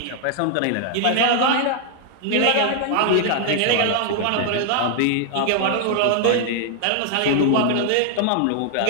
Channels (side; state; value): both; different; correlation 0.00